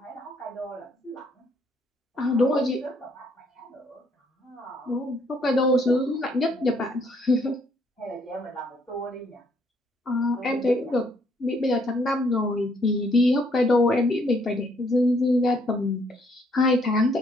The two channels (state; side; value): normal; both; correlation 0.68